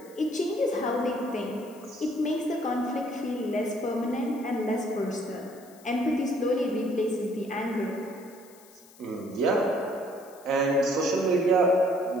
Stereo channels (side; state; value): left; noise; hiss, 24 dB below the sound